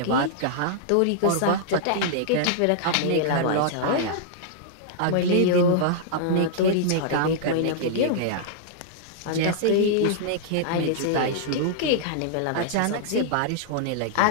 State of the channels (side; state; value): both; different; correlation -0.01